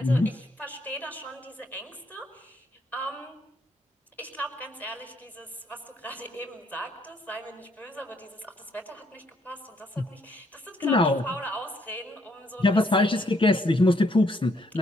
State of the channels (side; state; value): both; normal; correlation 0.71